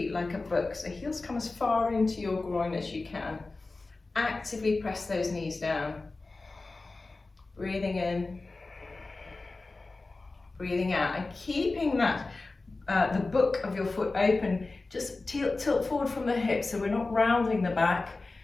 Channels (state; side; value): quieter; right; 3.5 dB